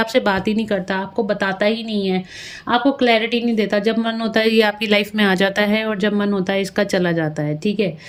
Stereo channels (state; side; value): identical; both; correlation 1.00